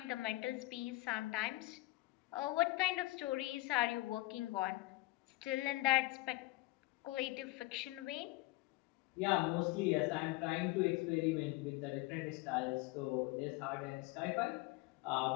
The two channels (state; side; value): quieter; right; 20.7 dB